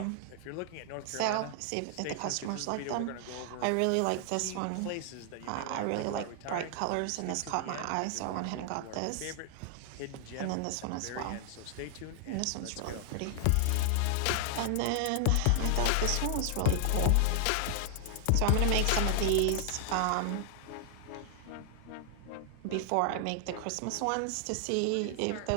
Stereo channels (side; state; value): both; different; correlation 0.00